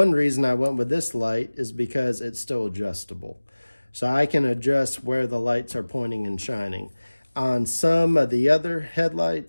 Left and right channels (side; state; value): both; inverted; correlation -1.00